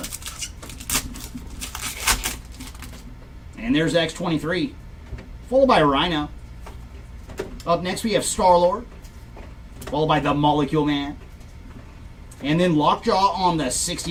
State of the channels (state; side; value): identical; both; correlation 1.00